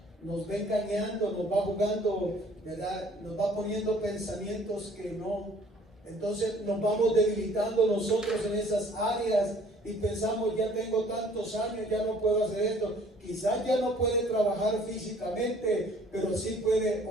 engañando, nos va jugando, ¿verdad? Nos va poniendo pensamientos que no. Entonces nos vamos debilitando nosotros en esas áreas y pensamos: ya tengo tantos años, ya no puedo hacer esto. Quizás ya no puede trabajar físicamente, pero sí puede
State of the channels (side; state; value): both; normal; correlation 0.56